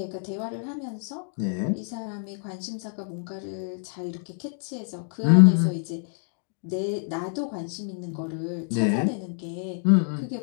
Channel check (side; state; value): right; silent; 60 dB below the other